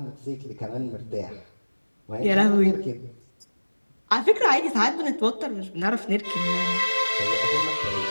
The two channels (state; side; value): inverted; both; correlation -1.00